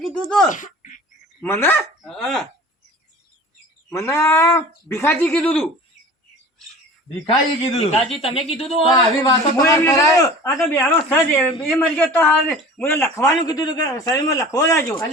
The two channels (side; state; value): both; normal; correlation 0.41